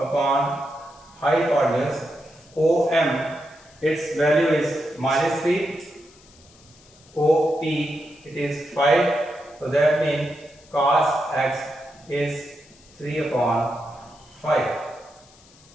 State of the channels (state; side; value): noise; left; hiss, 26 dB below the sound